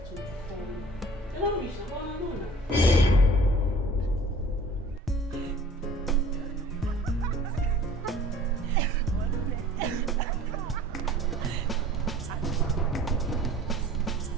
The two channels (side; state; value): both; normal; correlation 0.49